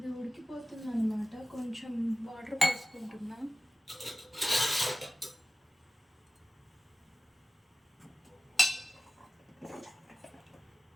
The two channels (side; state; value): both; normal; correlation 0.96